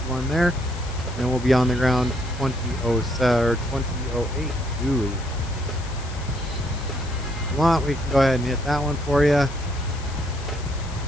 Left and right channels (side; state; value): left; noise; hiss, 17 dB below the sound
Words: there. And we'll be on the ground 2007 or 2008. Ooh. If you want, we can go ahead and hit that one for you.